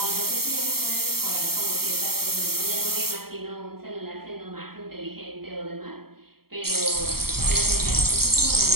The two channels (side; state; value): left; late; 0.94 ms